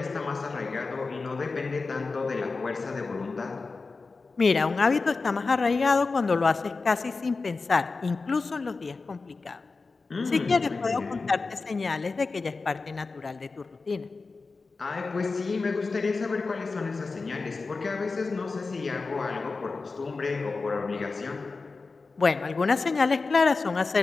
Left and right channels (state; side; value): quieter; right; 4.1 dB